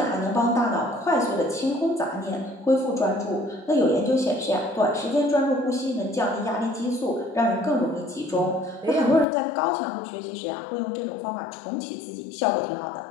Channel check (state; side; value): drops out; right; at 9.2 s